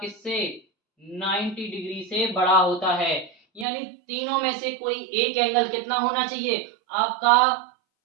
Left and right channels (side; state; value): left; drops out; at 3.7 s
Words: किससे 90 डिग्री से बड़ा होता है। यानी तीनों में से कोई एक एंगल कितना होना चाहिए आपका,